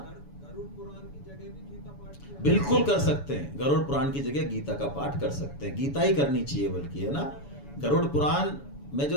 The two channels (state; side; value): late; right; 7.0 ms